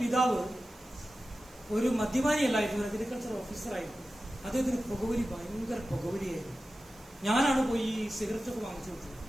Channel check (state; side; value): noise; right; hiss, 26 dB below the sound